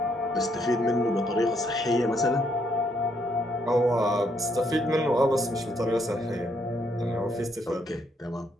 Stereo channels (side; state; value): both; normal; correlation 0.73